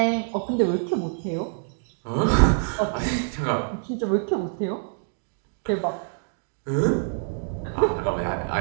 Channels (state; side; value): silent; left; digital silence